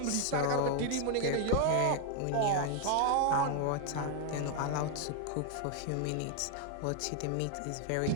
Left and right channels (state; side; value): different; both; correlation 0.00